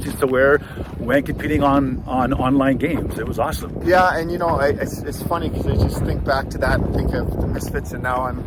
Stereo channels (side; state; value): both; identical; correlation 1.00